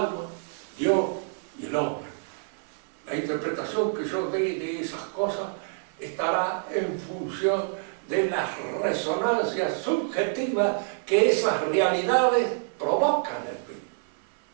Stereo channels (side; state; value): left; silent; 57 dB below the other